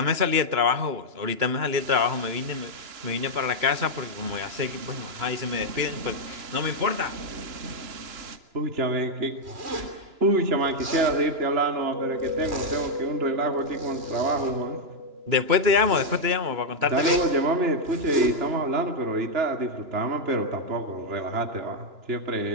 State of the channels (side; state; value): left; late; 2.9 ms